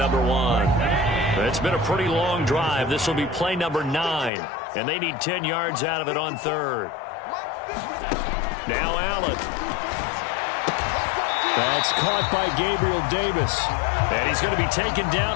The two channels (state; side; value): drops out; right; at 4.3 s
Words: 1. It's been a pretty long drive. This will be play number 9. And they need 10 yards out of it on 3rd. Now Allen. That's caught by Gabriel Davis. And he's going to be taken